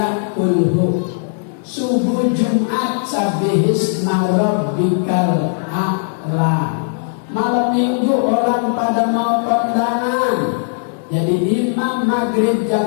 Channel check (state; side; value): silent; right; digital silence